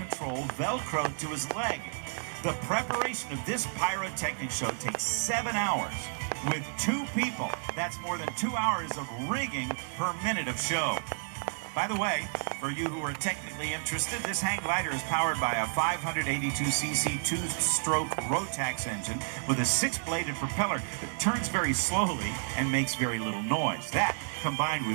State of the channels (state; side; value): silent; left; digital silence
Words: velcroed to his leg. The preparation of this pyrotechnic show takes 7 hours. With 2 people, that's more than 2 hours of rigging per minute of show. By the way, for you who are technically interested, this hang glider is powered by a 582cc 2-stroke Rotax engine with a 6-bladed propeller that turns very slowly and makes very little noise. That, combined